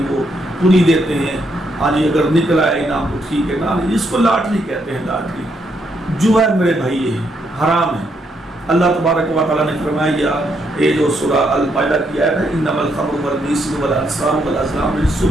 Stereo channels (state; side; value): normal; both; correlation 0.76